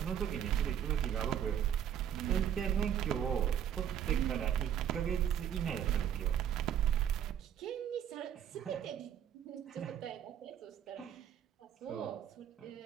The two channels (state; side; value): quieter; left; 9.5 dB